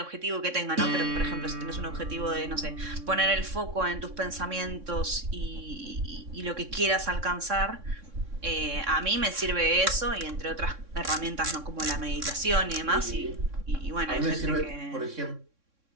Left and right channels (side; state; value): left; late; 3.6 ms